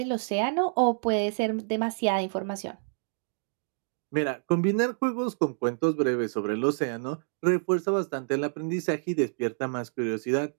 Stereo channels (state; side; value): silent; left; digital silence